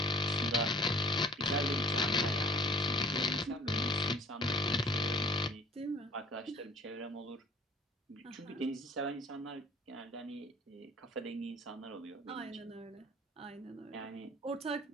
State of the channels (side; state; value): both; normal; correlation 0.50